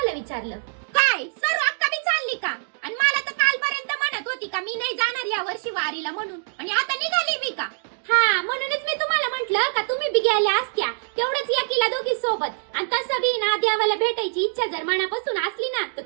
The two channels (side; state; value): left; silent; digital silence